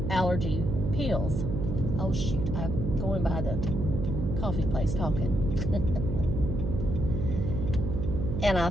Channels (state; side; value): noise; right; hum, 2 dB below the sound